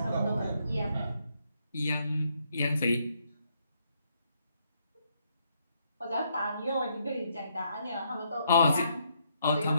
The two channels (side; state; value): both; inverted; correlation -0.74